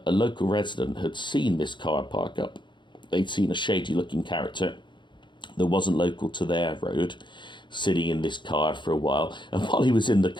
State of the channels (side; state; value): right; late; 0.23 ms